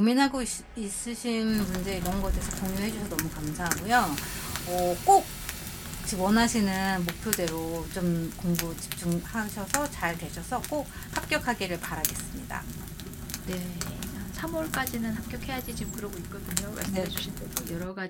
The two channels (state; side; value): identical; both; correlation 1.00